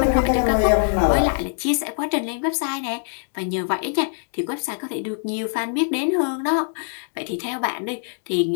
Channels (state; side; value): silent; right; digital silence